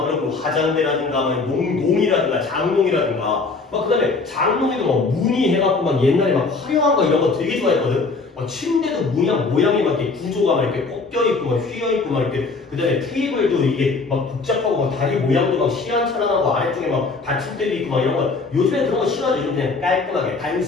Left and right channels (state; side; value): quieter; right; 4.1 dB